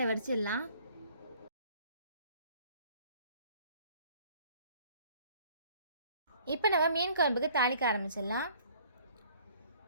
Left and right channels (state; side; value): inverted; both; correlation -0.56